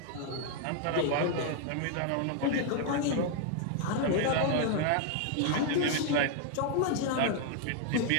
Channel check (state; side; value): different; both; correlation 0.00